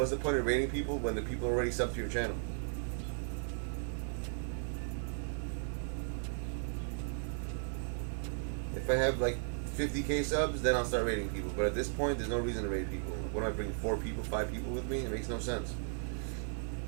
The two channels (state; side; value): silent; left; digital silence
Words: the point of raiding people when the people are already subbed to your channel? If I have like 50K subs, then I'll start raiding people. But at this point, there's no reason to raid people. What am I bringing 4 people, 5 people with me? It makes no sense.